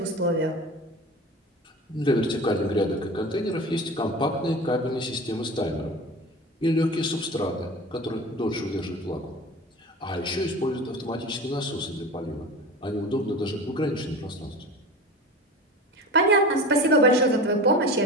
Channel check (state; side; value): normal; both; correlation 0.33